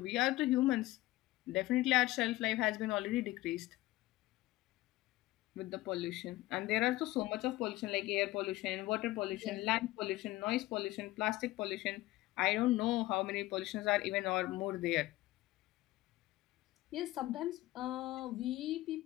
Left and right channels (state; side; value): quieter; right; 17.8 dB